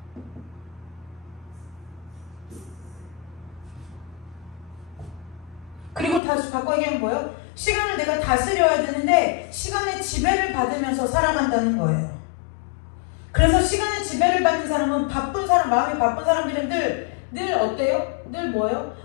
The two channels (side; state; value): right; drops out; at 6.2 s